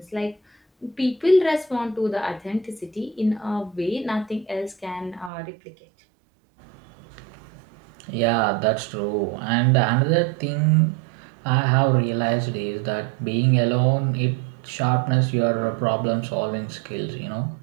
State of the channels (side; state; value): left; drops out; at 5.3 s